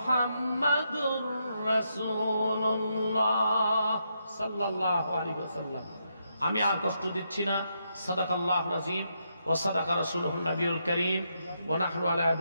রাসূলুল্লাহ সাল্লাল্লাহু আলাইহি ওয়াসাল্লাম। আমি আর কষ্ট দিচ্ছি না। সাদাকাল্লাহুল আযীম ওয়া সাদাকা রাসূলুহুন নবিয়ুল কারীম ওয়া নাহনু আলা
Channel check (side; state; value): both; inverted; correlation -0.80